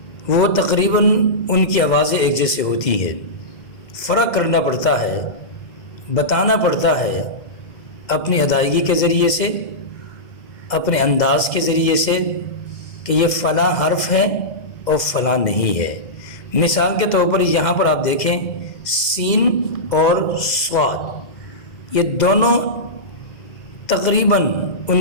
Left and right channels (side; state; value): right; late; 2.1 ms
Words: وہ تقریباً ان کی آوازیں ایک جیسے ہوتی ہیں، فرق کرنا پڑتا ہے، بتانا پڑتا ہے اپنی ادائیگی کے ذریعے سے، اپنے انداز کے ذریعے سے کہ یہ فلاں حرف ہے اور فلاں نہیں ہے۔ مثال کے طور پر یہاں پر آپ دیکھیں سین اور صاد، یہ دونوں تقریباً